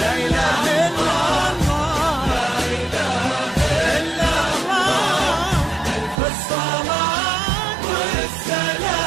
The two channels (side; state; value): left; drops out; at 6.2 s